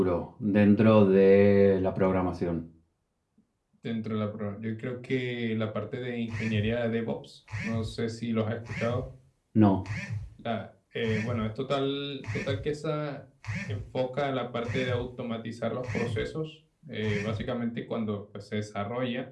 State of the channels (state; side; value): identical; both; correlation 1.00